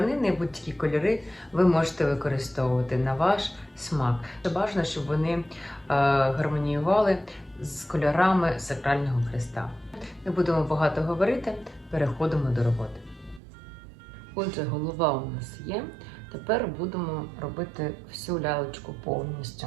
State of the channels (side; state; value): left; drops out; at 13.4 s